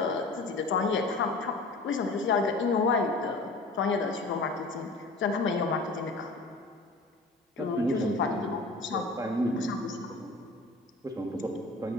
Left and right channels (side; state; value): right; quieter; 3.2 dB